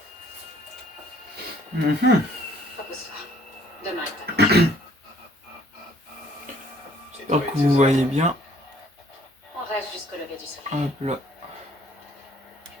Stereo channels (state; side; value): normal; both; correlation 0.60